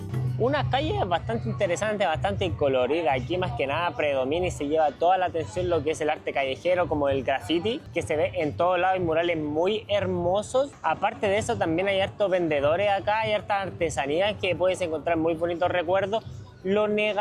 Una calle bastante interesante, bastante colorida. Aquí más que nada predomina y se lleva toda la atención lo que es el arte callejero, como el graffiti, que se ve en todos lados, y murales muy hermosos. Aparte de eso, también hay hartos vendedores acá, hay hartas artesanías que puedes encontrar muy bonitos recuerdos. Lo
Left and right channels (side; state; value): both; identical; correlation 1.00